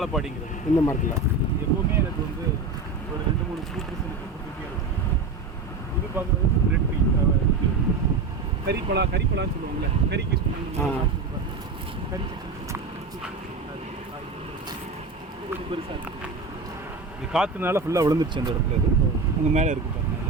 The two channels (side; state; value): left; quieter; 3.8 dB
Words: இந்த மரத்தில் எப்போவுமே எனக்கு வந்து ஒரு 2-3 ஃப்ரூட்ஸ் எனக்கு கொடுத்துட்டே இருக்கும். இது பார்க்குறது ரெட் ட்ரீ, கறிப்பழான்னு சொல்லுவாங்கள்ல, கறிக்கு கறி கொஞ்சம் பெருசாக இருக்குது. இது காற்றுனால ஃபுல்லாக விழுந்துருச்சு அந்த இடத்துல. இது உங்கள் மேலே இருக்குது பாருங்கள்,